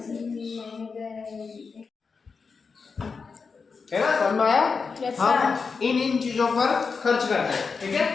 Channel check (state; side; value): quieter; right; 5.1 dB